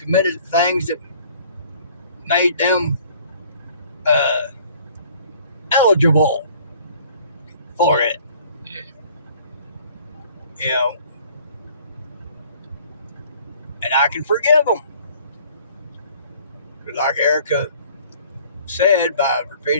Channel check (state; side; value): inverted; both; correlation -0.54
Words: things that made them eligible for it. Yeah. You know, and I can forgive them. But like Erica said, by